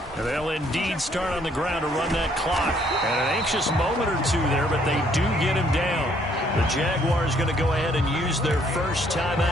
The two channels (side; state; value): both; normal; correlation 0.66